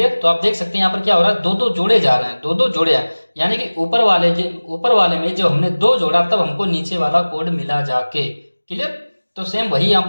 तो आप देख सकते हैं यहाँ पर क्या हो रहा है, 2 2 जोड़े जा रहे हैं, 2 2 जोड़े हैं, यानी कि ऊपर वाले में जब हमने 2 जोड़ा तब हमको नीचे वाला कोड मिला जाके। क्लियर। तो सेम वही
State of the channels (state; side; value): inverted; both; correlation -1.00